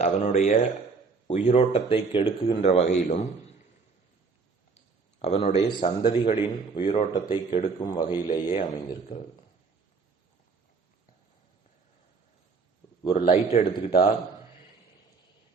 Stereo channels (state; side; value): quieter; left; 4.6 dB